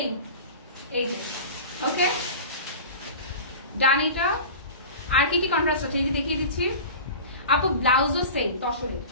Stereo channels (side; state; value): both; inverted; correlation -0.35